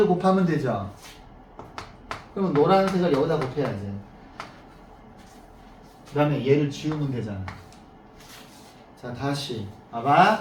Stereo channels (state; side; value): identical; both; correlation 1.00